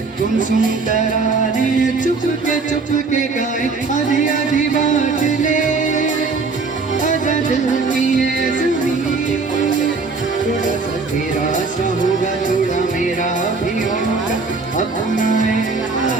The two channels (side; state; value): left; quieter; 4.2 dB